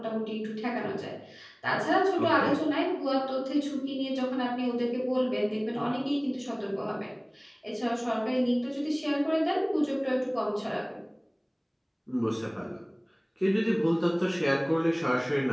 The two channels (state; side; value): identical; both; correlation 1.00